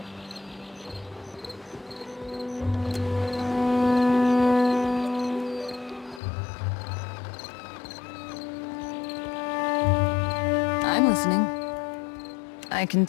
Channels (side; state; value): right; drops out; at 6.2 s